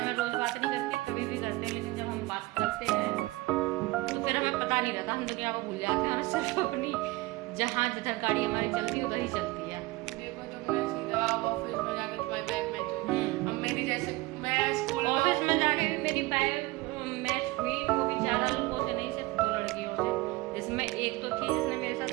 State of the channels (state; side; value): quieter; left; 21.2 dB